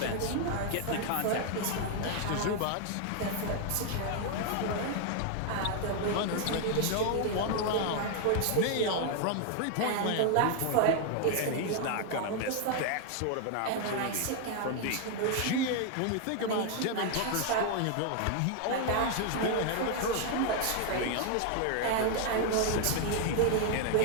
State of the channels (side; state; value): both; different; correlation 0.00